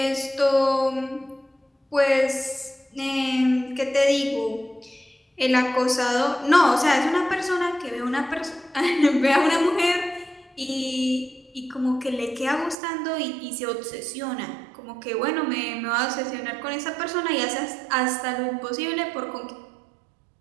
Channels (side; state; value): left; drops out; at 12.8 s